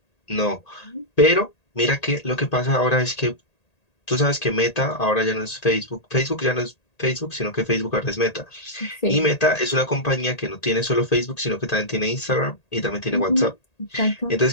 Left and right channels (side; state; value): right; late; 1.8 ms